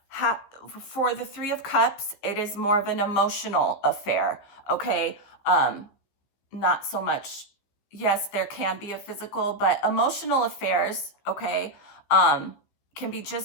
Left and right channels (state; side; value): late; right; 15 ms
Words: for the Three of Cups, it is more of an emotional affair, okay? Not so much, yes, there can be a physical, but emotional affairs, okay, can be